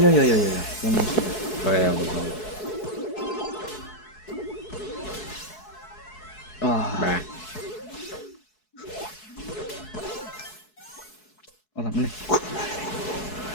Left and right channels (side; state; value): right; late; 4.7 ms